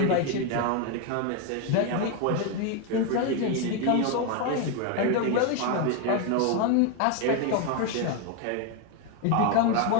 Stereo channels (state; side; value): different; both; correlation 0.01